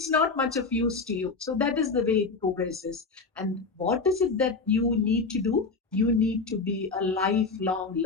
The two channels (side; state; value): right; quieter; 4.2 dB